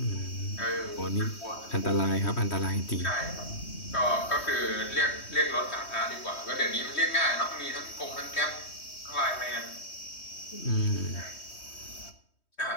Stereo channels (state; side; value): late; right; 3.1 ms